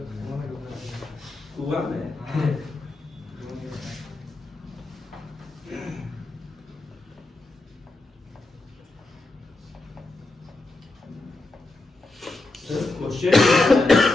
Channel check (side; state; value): right; quieter; 3.0 dB